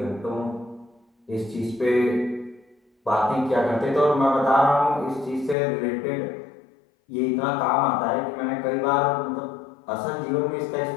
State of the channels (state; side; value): drops out; right; at 5.6 s